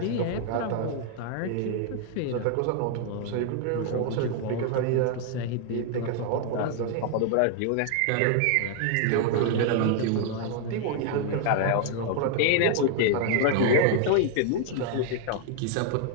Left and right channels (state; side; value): different; both; correlation 0.00